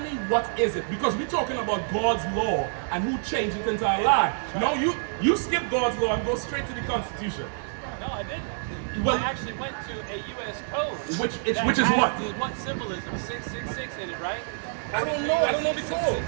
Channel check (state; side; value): silent; left; digital silence